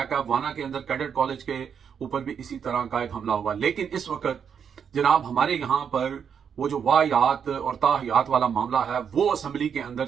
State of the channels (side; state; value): left; quieter; 7.4 dB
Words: है। वाना के अंदर कैडेट कॉलेज के ऊपर भी इसी तरह का एक हमला हुआ। लेकिन इस वक्त जनाब हमारे यहाँ पर वो जो वाहियात और ताहियात वाला मामला है वो असेंबली के अंदर